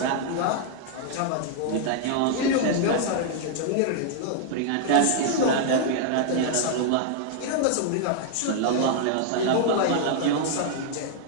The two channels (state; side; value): different; both; correlation -0.01